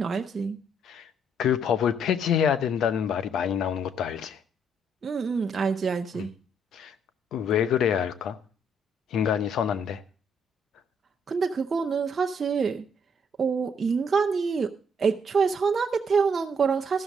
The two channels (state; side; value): normal; both; correlation 0.68